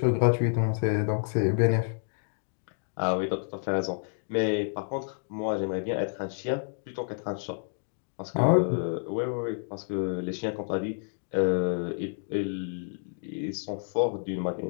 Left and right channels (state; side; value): silent; right; digital silence